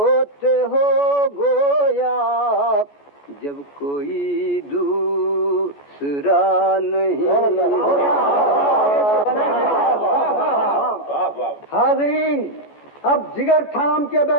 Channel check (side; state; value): right; late; 14 ms